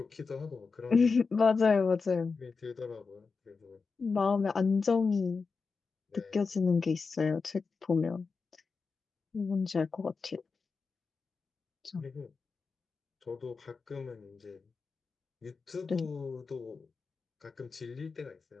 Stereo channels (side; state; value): right; quieter; 4.7 dB